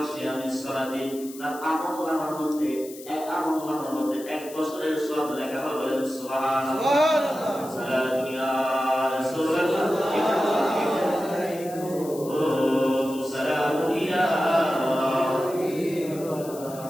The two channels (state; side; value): noise; left; hiss, 17 dB below the sound